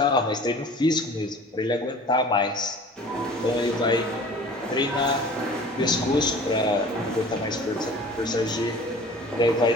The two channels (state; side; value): normal; both; correlation 0.44